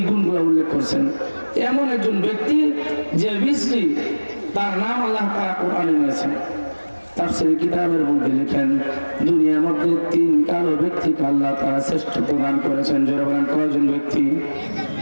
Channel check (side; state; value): both; inverted; correlation -1.00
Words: গুণগুলো উল্লেখ করছেন। এমন একজন ব্যক্তি যে বিশ্রী, তার নাম আল্লাহ তাআলা কোরআনে নিয়েছেন। তাফসীরের কিতাবের মধ্যে লেখেন, দুনিয়ার মধ্যে 3 কালো ব্যক্তিকে আল্লাহ তাআলা শ্রেষ্ঠত্ব দান করেছেন। যারা বলেন কয়জন ব্যক্তি?